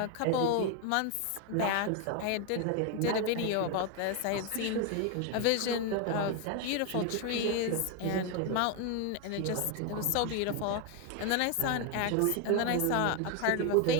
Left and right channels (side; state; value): both; different; correlation 0.01